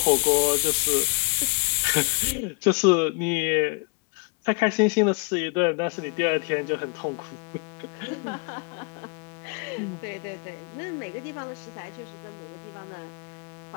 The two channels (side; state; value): right; quieter; 36.0 dB